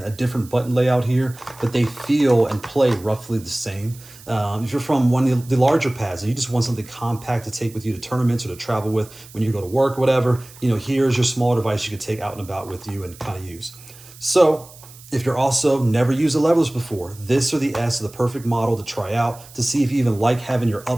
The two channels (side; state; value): right; noise; hiss, 21 dB below the sound